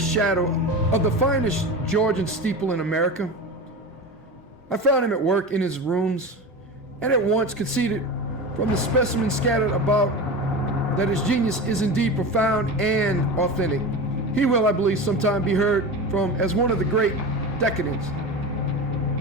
of the finest Georgian steeple in America. I found him at work in his rooms and at once conceded from the specimens scattered about that his genius is indeed profound and authentic. He will, I believe, sometime be heard from as one of the great decadents,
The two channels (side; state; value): both; normal; correlation 0.27